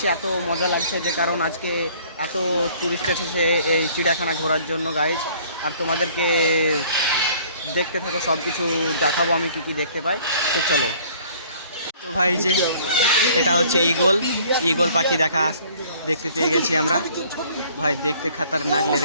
এত মজা লাগছে যে কারণ আজকে এত টুরিস্ট এসেছে এই চিড়িয়াখানা ঘোরার জন্য গাইজ। আর তোমাদেরকে দেখতে থাকো, সব কিছু দেখাবো আমি কী কী দেখতে পাই। তো চলো। তো ভাই, যে এটা হচ্ছে ঈগল পাখি দেখতে পেয়ে গেছি আমরা। ভাই দেখতে খতরনাক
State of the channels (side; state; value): both; inverted; correlation -0.55